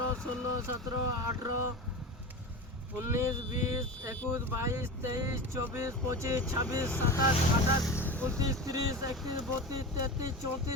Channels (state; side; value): normal; both; correlation 0.27